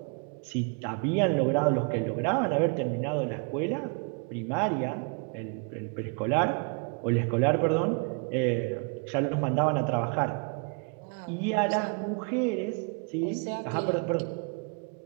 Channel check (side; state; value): left; quieter; 36.7 dB